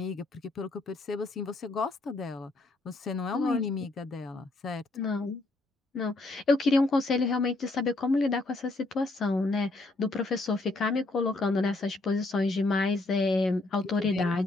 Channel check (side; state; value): right; quieter; 3.0 dB